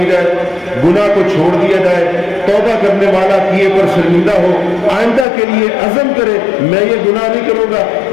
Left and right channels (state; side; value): drops out; right; at 5.2 s